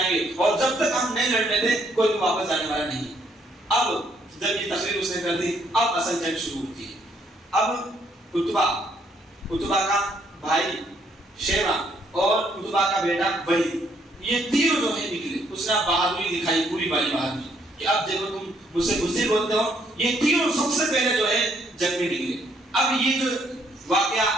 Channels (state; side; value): normal; both; correlation 0.69